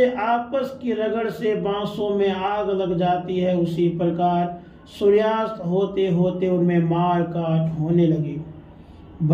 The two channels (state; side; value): identical; both; correlation 1.00